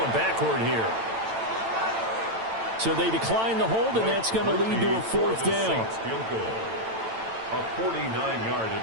backward here. So they decline the hold, and that's going to lead to a fourth down. Field goal. A 49-yard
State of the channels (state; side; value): late; left; 8.9 ms